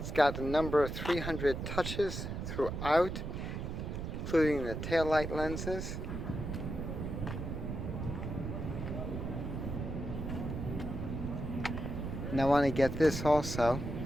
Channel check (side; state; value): right; noise; rumble, 5 dB below the sound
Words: got a number of 300 touches throughout, including the taillight lenses. And I want to get this also.